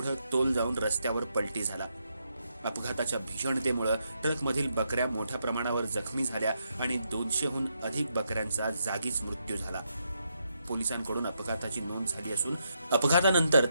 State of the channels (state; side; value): inverted; both; correlation -0.80